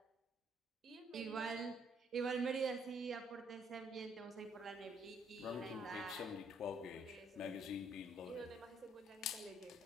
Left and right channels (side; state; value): both; normal; correlation 0.67